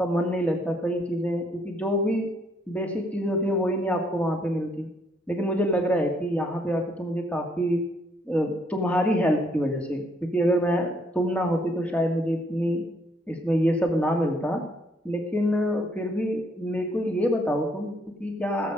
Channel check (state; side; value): normal; both; correlation 0.69